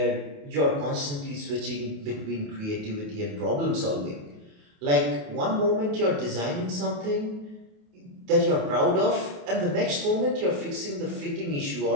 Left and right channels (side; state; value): left; late; 28 ms